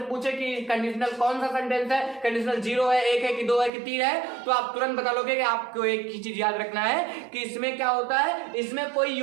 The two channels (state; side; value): drops out; left; at 3.7 s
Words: पूछे कि कंडीशनल कौन सा सेंटेंस है, कंडीशनल 0 है, 1 है कि 2 है कि 3 है, तो आप तुरंत बता लोगे कि आपको एक ही चीज याद रखना है कि इसमें क्या होता है, इसमें कोई